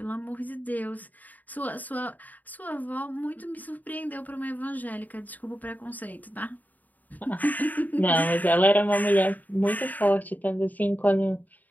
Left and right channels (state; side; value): late; right; 0.081 ms